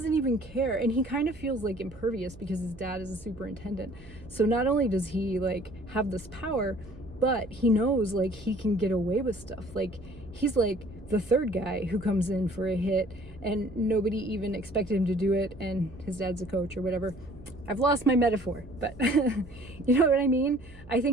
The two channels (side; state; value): right; noise; hum, 20 dB below the sound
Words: even care. And he kind of feels, like, impervious because his dad is a superintendent. So not only does he, like, have this power, but he knows, like, he can get away with stuff. Like, he's, like, the third guy who comes in for a hit and nobody even expected him to do it, and his dad's a coach or whatever. I've lost my metaphor, but you know what I mean? I